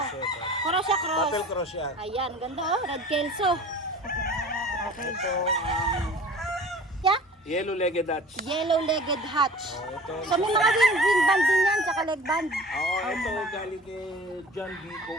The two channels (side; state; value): both; normal; correlation 0.43